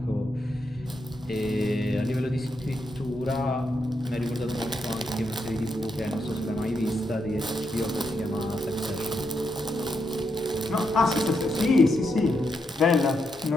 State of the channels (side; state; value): both; normal; correlation 0.82